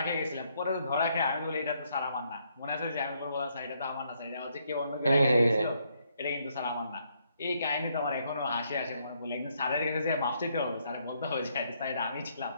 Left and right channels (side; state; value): both; inverted; correlation -0.73